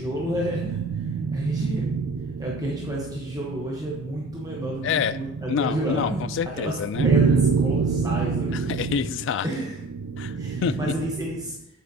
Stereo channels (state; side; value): normal; both; correlation 0.42